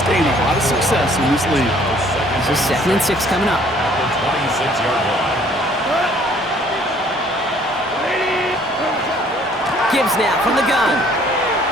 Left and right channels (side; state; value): both; normal; correlation 0.59